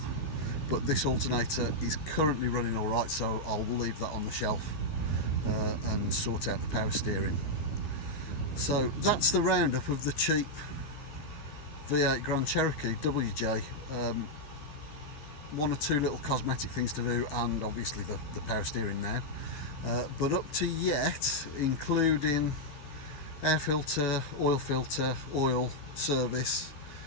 But this alternator is currently running all right, so I'll leave that on the shelf and sort out the power steering. So that's the roundup of the cheap V8 Grand Cherokee WJ. One or two little cosmetic things to do, and obviously the power steering now. But up to yet, including air filter, oil service,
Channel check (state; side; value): late; right; 14 ms